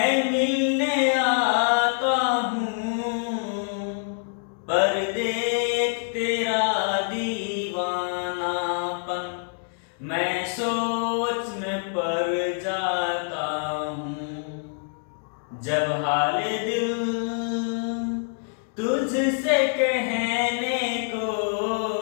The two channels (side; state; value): right; silent; 61 dB below the other